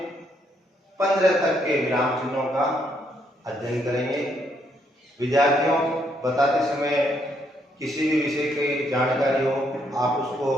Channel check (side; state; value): both; normal; correlation 0.73